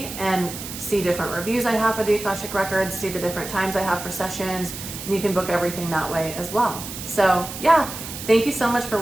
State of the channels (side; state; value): right; noise; hiss, 10 dB below the sound